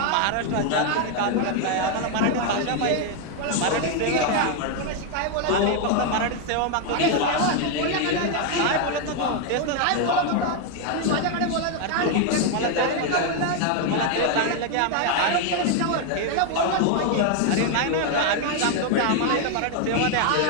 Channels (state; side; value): different; both; correlation 0.01